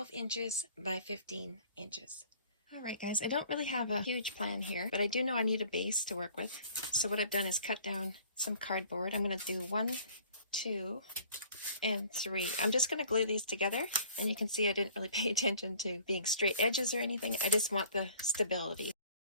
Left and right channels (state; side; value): inverted; both; correlation -0.51